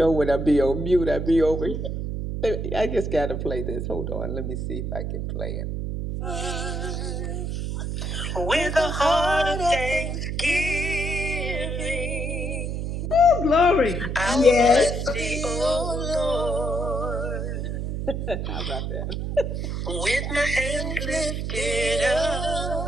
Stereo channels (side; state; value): right; noise; hum, 3 dB below the sound